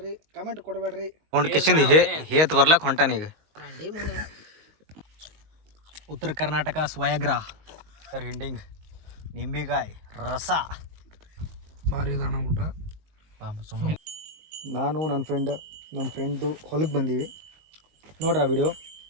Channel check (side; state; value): left; late; 19 ms